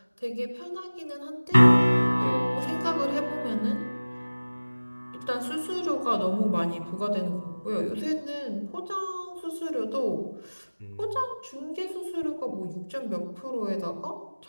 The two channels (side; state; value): both; inverted; correlation -1.00